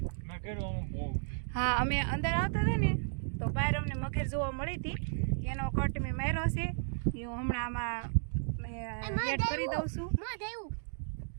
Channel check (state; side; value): silent; left; digital silence